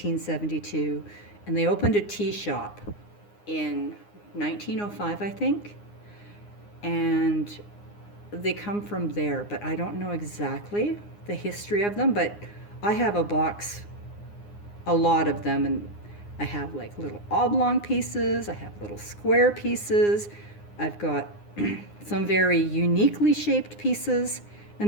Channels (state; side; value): late; right; 9.7 ms